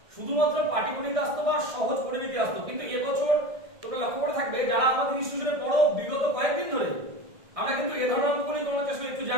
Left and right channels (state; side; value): late; left; 1.6 ms